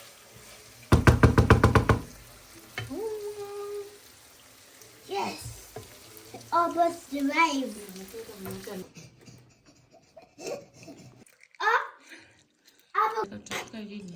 Yes. Almost arrived.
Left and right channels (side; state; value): both; identical; correlation 1.00